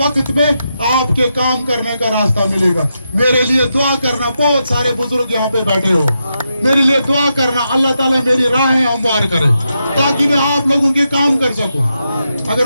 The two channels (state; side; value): inverted; both; correlation -0.85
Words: में आपके काम करने का रास्ता मिलेगा। मेरे लिए दुआ करना, बहुत सारे बुजुर्ग यहाँ पे बैठे हो, मेरे लिए दुआ करना, अल्लाह ताला मेरी राहें हमवार करे ताकि मैं आप लोगों के काम कर सकूं।